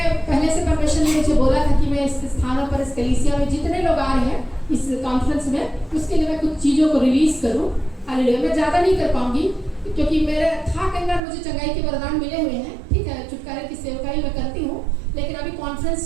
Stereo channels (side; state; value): left; drops out; at 11.2 s